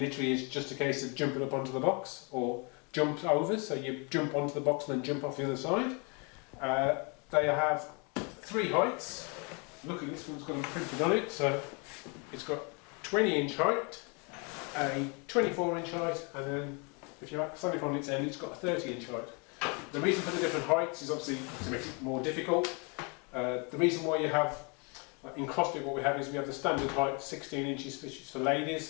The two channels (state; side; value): quieter; right; 33.2 dB